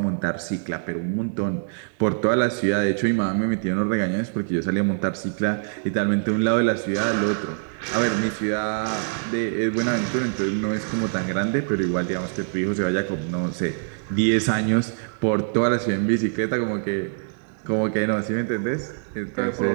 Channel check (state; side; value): silent; left; digital silence